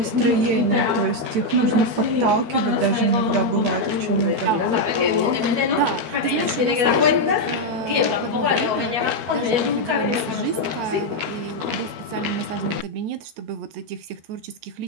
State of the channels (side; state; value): left; late; 12 ms